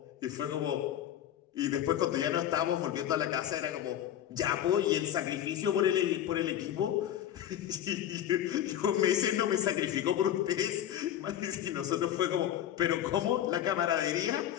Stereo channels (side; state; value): right; quieter; 11.1 dB